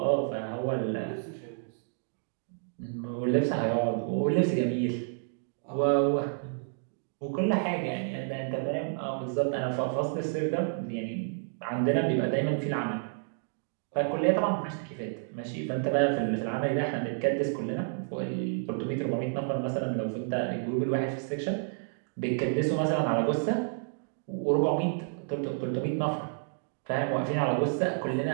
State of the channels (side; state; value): left; silent; digital silence